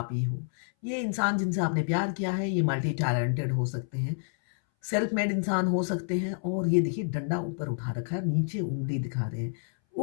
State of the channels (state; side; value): silent; right; 59 dB below the other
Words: ही हो। ये इंसान जिनसे आपने प्यार किया है ये मल्टी टैलेंटेड हो सकते हैं, सेल्फ मेड इंसान हो सकते हैं। और ये देखिए डंडा ऊपर उठा रखा है, नीचे उंगली दिखा रहे हैं।